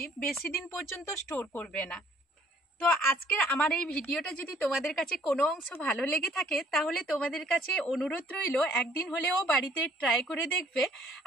বেশি দিন পর্যন্ত স্টোর করবে না। তো আজকের আমার এই ভিডিওটা যদি তোমাদের কাছে কোনো অংশ ভালো লেগে থাকে তাহলে তোমাদের কাছে অনুরোধ রইল একদিন হলেও বাড়িতে ট্রাই করে দেখবে।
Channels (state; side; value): normal; both; correlation 0.60